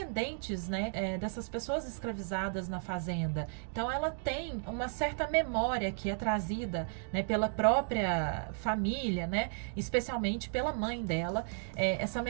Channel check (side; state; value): left; silent; 55 dB below the other